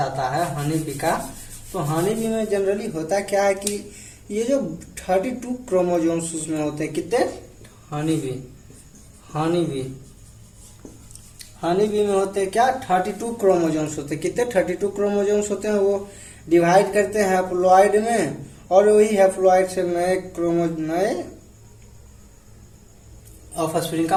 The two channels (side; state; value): both; identical; correlation 1.00